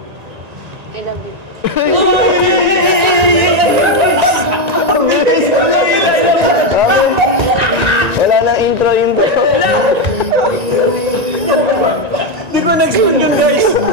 Ilan din. Wala nang intro. Di ko na-expect yun guys.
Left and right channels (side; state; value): left; late; 1.9 ms